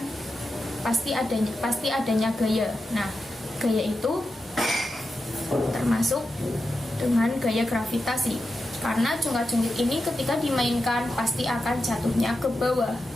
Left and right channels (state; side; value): normal; both; correlation 0.89